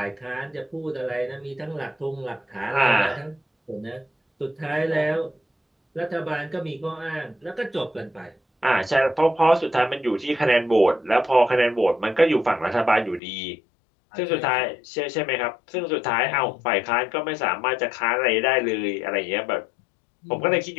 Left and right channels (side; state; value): right; drops out; at 13.2 s